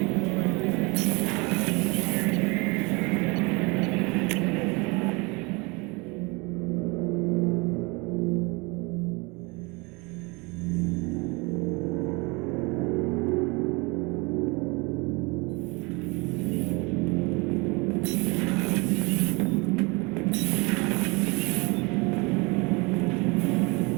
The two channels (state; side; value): quieter; left; 27.5 dB